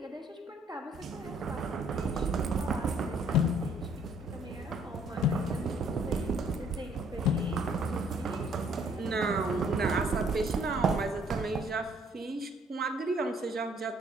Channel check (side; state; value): both; normal; correlation 0.62